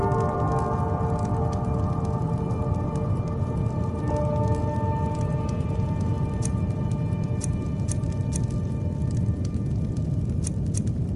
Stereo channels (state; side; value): identical; both; correlation 1.00